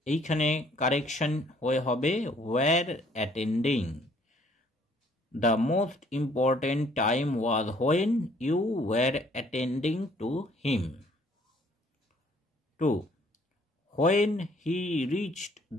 এইখানে কারেকশন হয়ে হবে were attending. The most important time was when you were attending to him. 2. When he reached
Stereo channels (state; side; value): normal; both; correlation 0.62